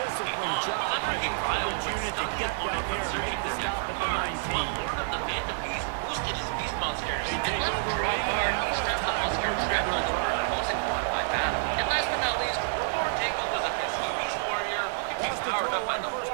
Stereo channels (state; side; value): silent; left; 59 dB below the other